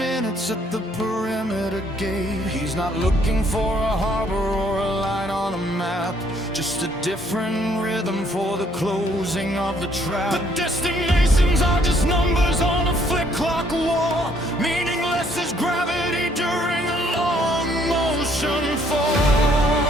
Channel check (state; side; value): normal; both; correlation 0.66